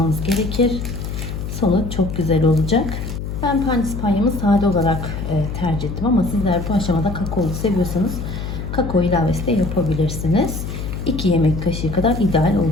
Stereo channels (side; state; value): left; noise; hum, 6 dB below the sound